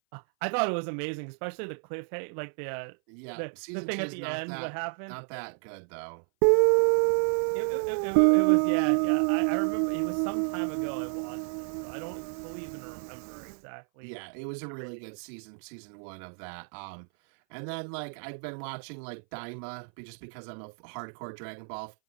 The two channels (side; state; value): left; silent; 58 dB below the other